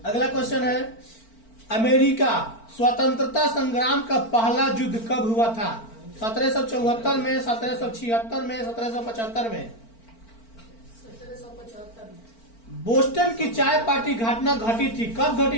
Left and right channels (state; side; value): late; right; 4.4 ms